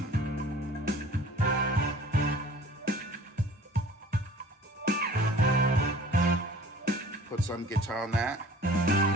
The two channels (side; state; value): both; normal; correlation 0.47